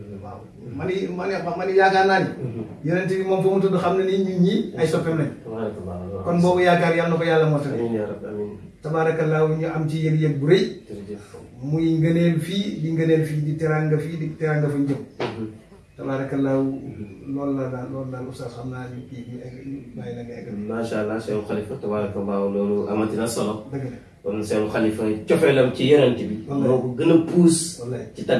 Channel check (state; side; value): identical; both; correlation 1.00